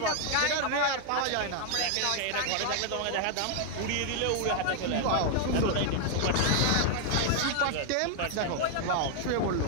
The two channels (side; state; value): both; different; correlation 0.00